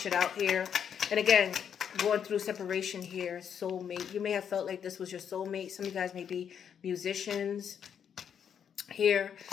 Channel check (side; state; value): right; quieter; 8.1 dB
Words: out here. And again, going through separation here. Soulmate. You may have felt like this was your soulmate. Some of you guys may be musicians here,